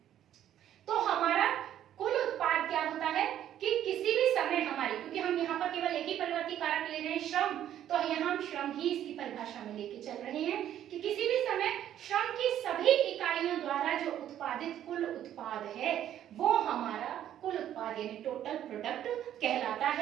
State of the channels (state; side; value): quieter; left; 11.1 dB